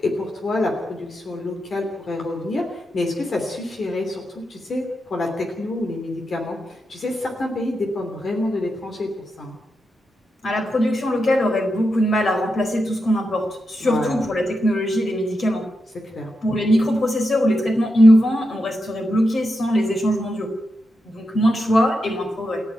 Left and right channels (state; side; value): normal; both; correlation 0.87